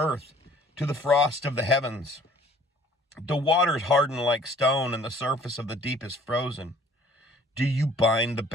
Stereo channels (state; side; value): normal; both; correlation 0.55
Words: to the frost of the heavens? The waters harden like stone, and the surface of the deep is frozen. Do you bind the